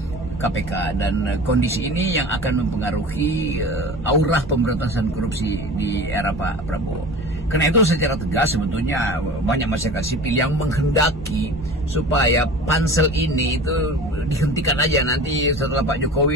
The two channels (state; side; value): normal; both; correlation 0.37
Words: KPK, dan kondisi ini yang akan mempengaruhi aura pemberantasan korupsi di era Pak Prabowo. Karena itu secara tegas sebetulnya banyak masyarakat sipil yang menghendaki supaya pansel ini itu dihentikan aja nanti setelah Pak